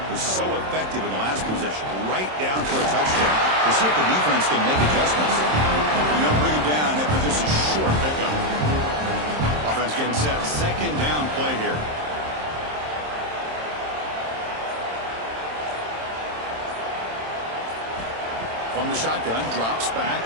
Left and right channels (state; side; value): late; left; 27 ms